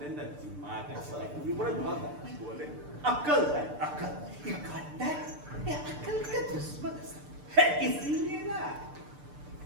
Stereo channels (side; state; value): left; late; 6.8 ms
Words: না দিমাগ আছে উপরে বলে अक्ल है अक्ल ये घंटा ये अक्ल का दुश्मन है इसीलिए ना